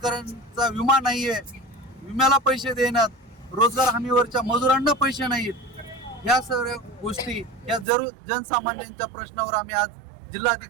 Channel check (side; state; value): left; drops out; at 7.9 s